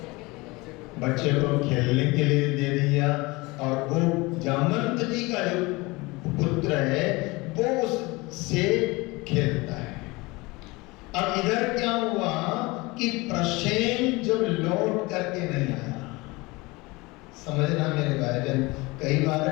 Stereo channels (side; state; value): right; quieter; 23.6 dB